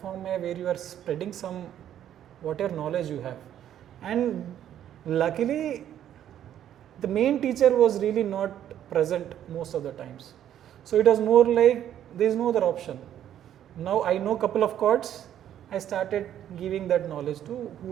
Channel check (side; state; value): left; quieter; 10.8 dB